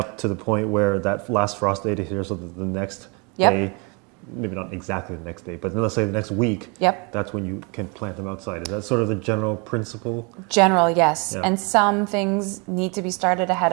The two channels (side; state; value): left; quieter; 32.1 dB